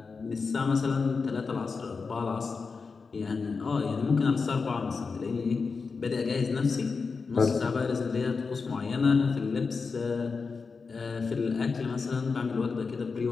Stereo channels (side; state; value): right; quieter; 4.8 dB